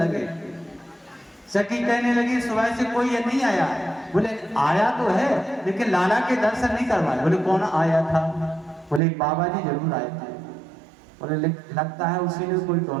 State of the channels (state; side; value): drops out; left; at 9.0 s